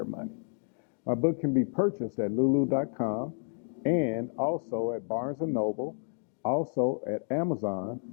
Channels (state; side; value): silent; right; 57 dB below the other